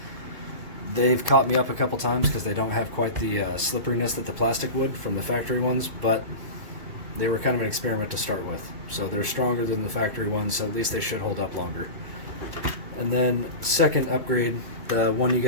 they've caught me up a couple times because they don't have quite the slipperiness that the plastic would from the factory ones, but they were kind of an experiment to start with. So they're stronger than the factory ones, so at least they should hold up longer. And then second upgrade, the one you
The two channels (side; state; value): left; late; 2.2 ms